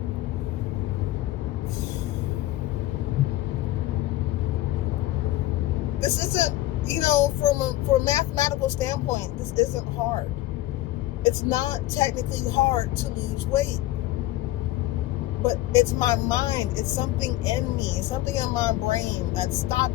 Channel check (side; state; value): right; quieter; 15.9 dB